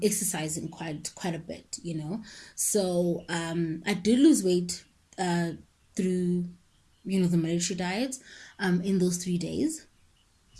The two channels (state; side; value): identical; both; correlation 1.00